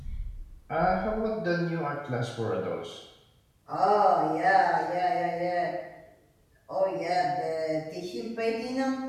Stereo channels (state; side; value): identical; both; correlation 1.00